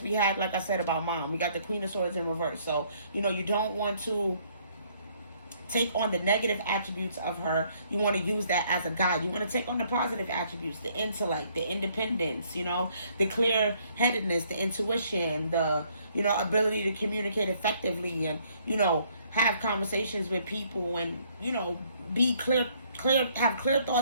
we had, like I said, about mom, we got the Queen of Swords in reverse. So, you know, you don't want to take on the negative attributes of her. You want to use that as a guide. You want to take on the positive attributes, the intellect, the independence, you know, the clear-headedness, the intuition, the, you know, ability to communicate effectively and, you know, have conversations with people and, you know, be clear, have clear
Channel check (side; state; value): both; inverted; correlation -0.65